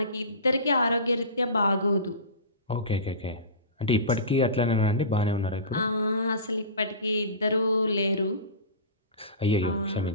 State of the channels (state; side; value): inverted; both; correlation -0.30